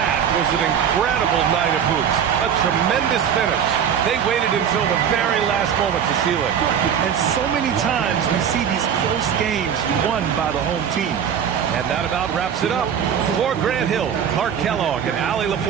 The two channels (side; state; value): left; quieter; 8.3 dB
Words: was an incredible night of hoops. A tremendous finish. They waited until the very last moment to seal it. And so many times we see these close games won by the home team. And that about wraps it up. For Grant Hill, Clark Kellogg, and Allie